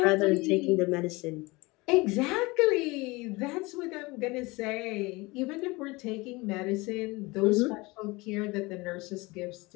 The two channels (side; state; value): right; quieter; 23.6 dB